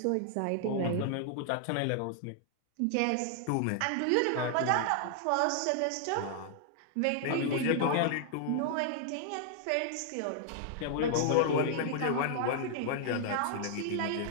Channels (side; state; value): both; different; correlation 0.00